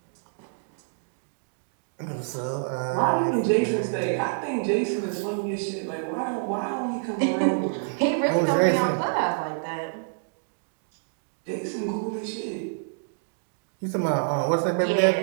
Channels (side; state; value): left; silent; digital silence